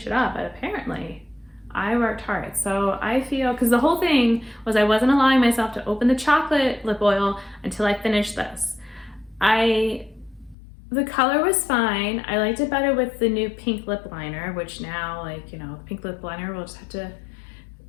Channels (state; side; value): drops out; right; at 10.6 s